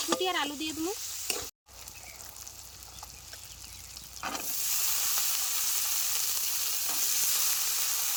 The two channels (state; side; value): identical; both; correlation 1.00